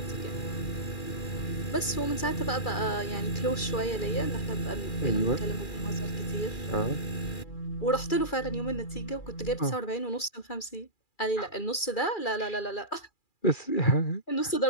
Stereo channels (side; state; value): right; late; 2.4 ms